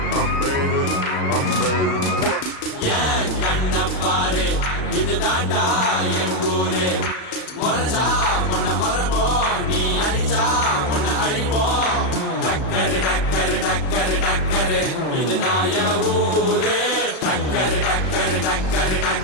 I made it, I made it. ஏன் கண்ண பாரு, இது தாண்டா என் ஊரு. முறைச்சா பொண்ண மரபோம், நீ அடிச்சா பொண்ண அழிப்போம். டக்கரு டக்கரு டக்கரு டக்கரு, இதுதான் என் ஊரு. டக்கரு டக்கரு டக்கரு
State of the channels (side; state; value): right; late; 36 ms